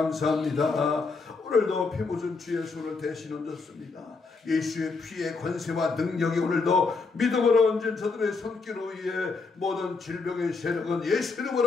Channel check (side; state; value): right; quieter; 4.3 dB